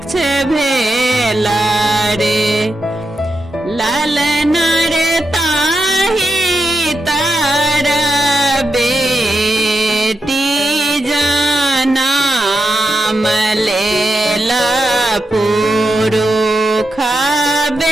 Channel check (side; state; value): both; normal; correlation 0.86